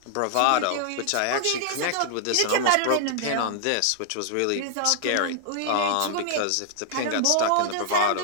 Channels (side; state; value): both; different; correlation -0.01